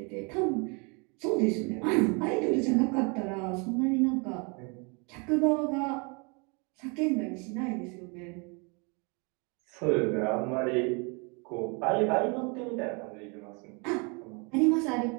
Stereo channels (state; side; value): quieter; left; 32.4 dB